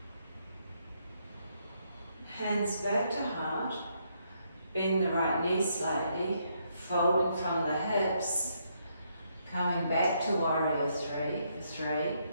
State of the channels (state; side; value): inverted; both; correlation -0.75